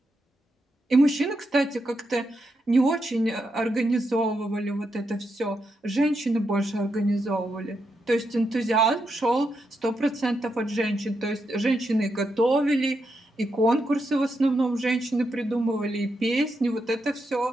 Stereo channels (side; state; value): both; normal; correlation 0.83